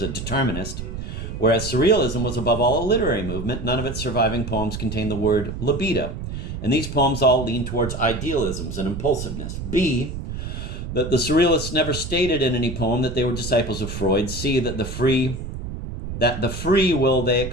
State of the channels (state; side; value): noise; right; rumble, 7 dB below the sound